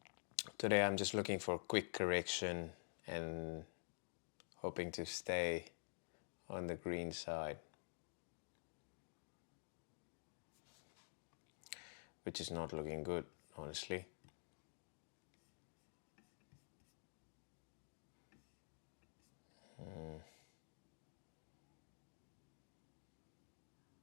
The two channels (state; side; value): silent; right; digital silence